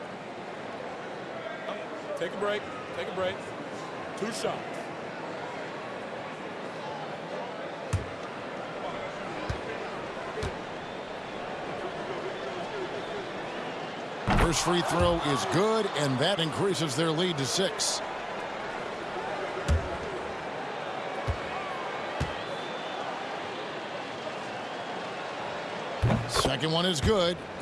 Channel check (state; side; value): identical; both; correlation 1.00